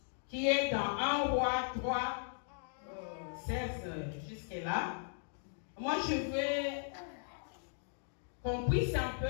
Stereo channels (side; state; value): right; silent; digital silence